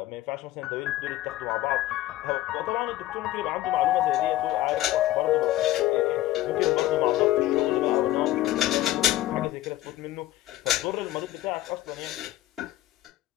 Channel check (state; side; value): quieter; right; 15.2 dB